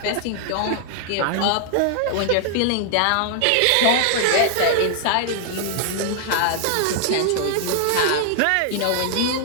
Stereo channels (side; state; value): both; different; correlation -0.01